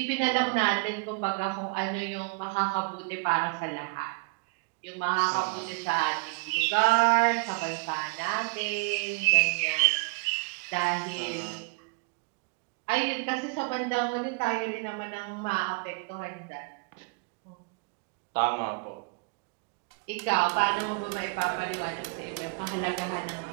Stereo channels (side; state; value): left; quieter; 31.5 dB